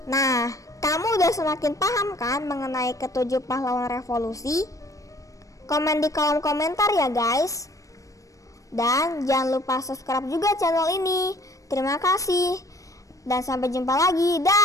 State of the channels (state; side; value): late; right; 0.16 ms